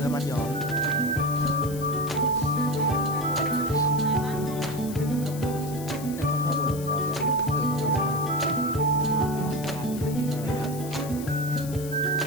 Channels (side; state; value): left; noise; hiss, 14 dB below the sound